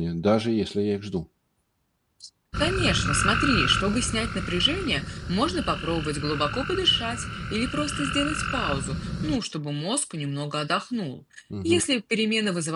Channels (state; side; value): identical; both; correlation 1.00